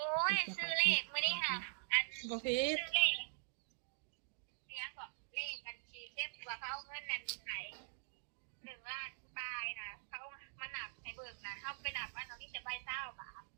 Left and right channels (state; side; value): silent; left; digital silence